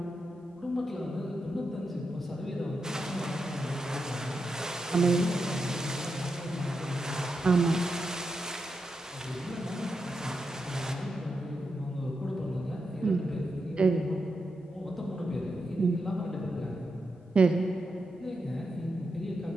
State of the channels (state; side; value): normal; both; correlation 0.86